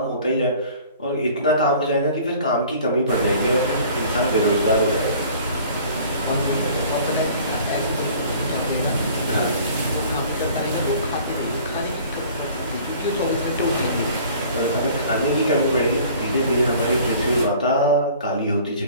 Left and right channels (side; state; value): both; inverted; correlation -0.49